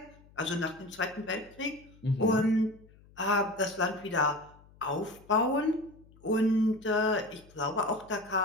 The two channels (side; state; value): left; noise; hum, 26 dB below the sound